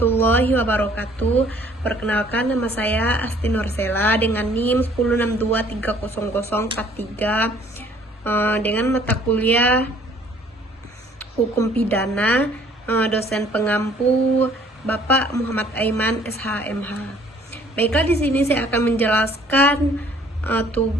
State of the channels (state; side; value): normal; both; correlation 0.57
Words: wabarakatuh. Perkenalkan, nama saya Asti Nursela dengan NIM 1062300043 dengan mata kuliah Hukum Pidana, dosen pengampu Bapak Muhammad Aiman SHMH. Baiklah, di sini saya akan menjelaskan